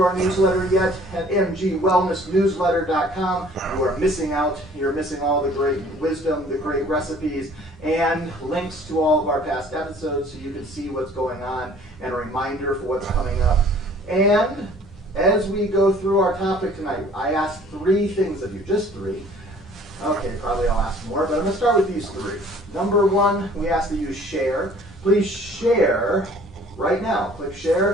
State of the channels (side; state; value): both; normal; correlation 0.53